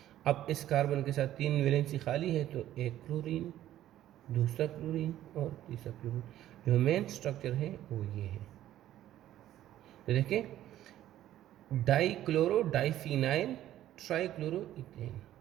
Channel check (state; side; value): quieter; left; 12.9 dB